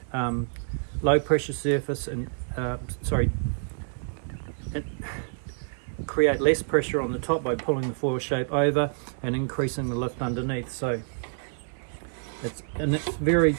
low pressure surface, and create less pressure on the top by pulling the foil shape over and increasing the lift underneath. So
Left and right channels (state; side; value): silent; left; digital silence